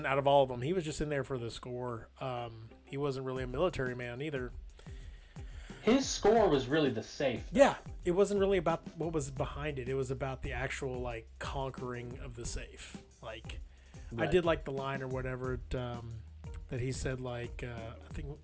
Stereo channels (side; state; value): both; identical; correlation 1.00